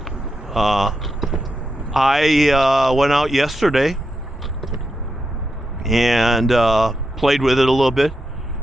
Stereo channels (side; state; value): both; normal; correlation 0.85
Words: I went out yesterday and played with it a little bit,